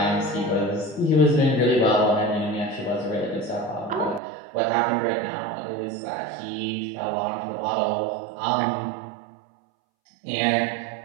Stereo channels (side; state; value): left; drops out; at 4.2 s